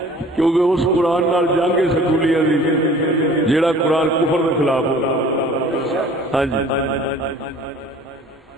کیونکہ اس قرآن نال جنگ سکولیاں دی جیڑا قرآن کفر کے خلاف ہو۔ ہاں جی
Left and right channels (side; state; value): both; normal; correlation 0.49